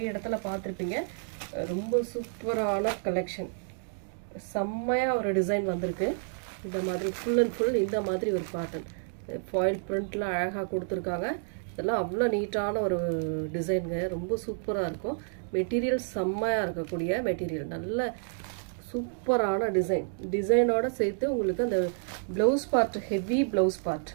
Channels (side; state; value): left; silent; digital silence